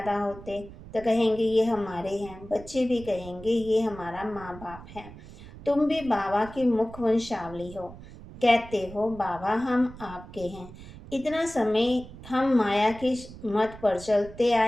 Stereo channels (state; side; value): noise; right; rumble, 16 dB below the sound